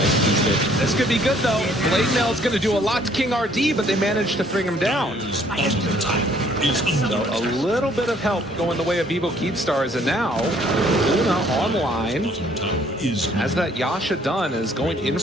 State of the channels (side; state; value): both; normal; correlation 0.62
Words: these days. This could be good, though. Blade Mail is going to do a lot to King RD, but they managed to bring him down. So a little bit of help going the way of Vivo Keepstars, and now Luna online. As that Yasha done is going in